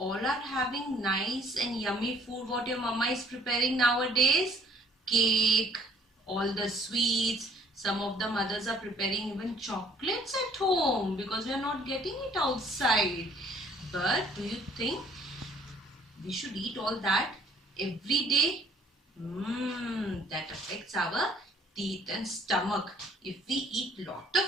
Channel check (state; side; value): normal; both; correlation 0.58